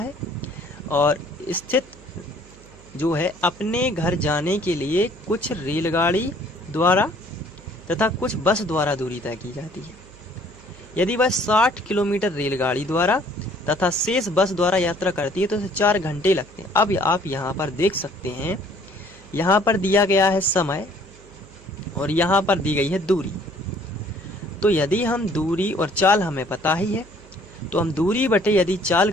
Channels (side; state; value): right; noise; hum, 22 dB below the sound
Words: और स्थित जो है अपने घर जाने के लिए कुछ रेलगाड़ी द्वारा तथा कुछ बस द्वारा दूरी तय की जाती है। यदि वह 60 किलोमीटर रेलगाड़ी द्वारा तथा शेष बस द्वारा यात्रा करती है तो उसे 4 घंटे लगते हैं। अब आप यहाँ पर देख सकते हैं, यहाँ पर दिया गया है समय और यहाँ पर दी गई है दूरी। तो यदि हम दूरी और चाल हमें पता ही है तो हम दूरी बटे यदि चाल